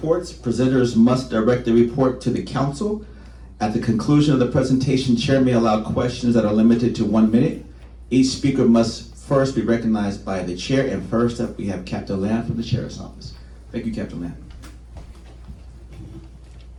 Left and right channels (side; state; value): both; identical; correlation 1.00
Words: Presenters must direct the report to the council. At the conclusion of the presentation, chair may allow questions that are limited to 1 minute. Each speaker must first be recognized by the chair, and first up we have Captain Lamb from the Sheriff's Office. Thank you, Captain Lamb.